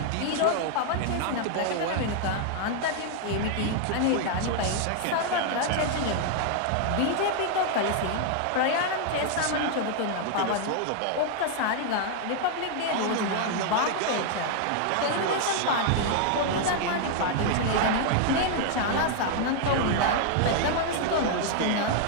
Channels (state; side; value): different; both; correlation 0.00